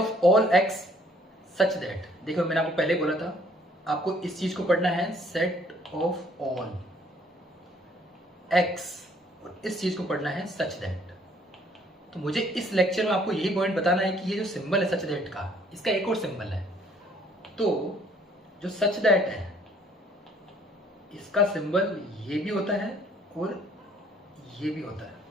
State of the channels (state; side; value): normal; both; correlation 0.61